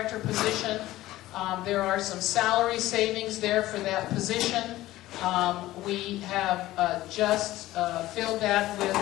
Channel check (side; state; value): right; quieter; 16.2 dB